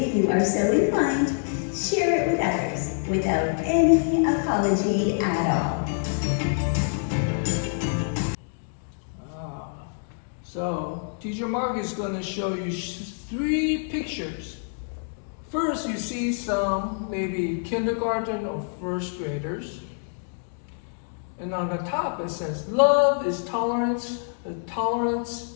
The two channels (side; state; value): right; silent; digital silence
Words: you are so inclined, share it with others without any apology at all. So, Teacher Mark is going to show you 3 pictures. First, you see some maybe kindergarten or 1st graders. And on the top it says, love is tolerance, tolerance